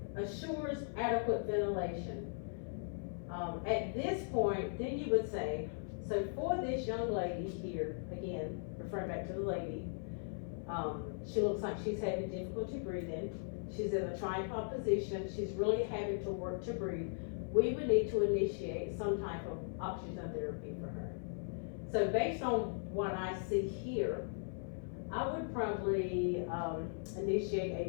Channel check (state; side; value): silent; right; 52 dB below the other